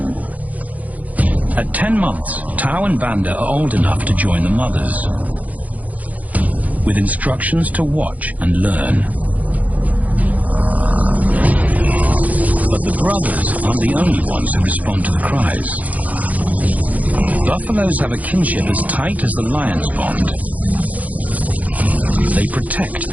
At 10 months, Tau and Banda are old enough to join the mothers, with instructions to watch and learn. But the brothers aren't the only ones who respond to the cries. Buffaloes have a kinship as tight as the lions bond. They protect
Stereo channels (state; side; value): late; left; 0.075 ms